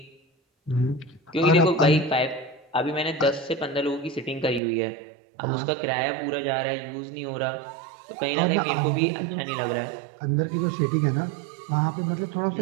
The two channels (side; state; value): left; drops out; at 4.6 s